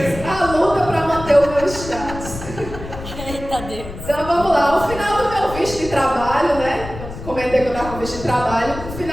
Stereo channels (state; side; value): noise; left; rumble, 11 dB below the sound